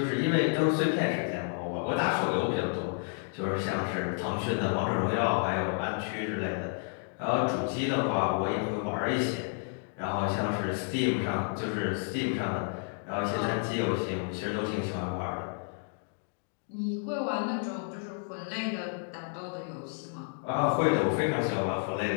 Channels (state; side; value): silent; right; 57 dB below the other